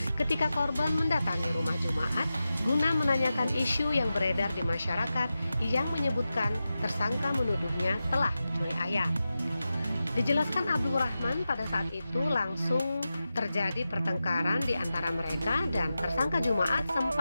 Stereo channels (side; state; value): both; inverted; correlation -0.92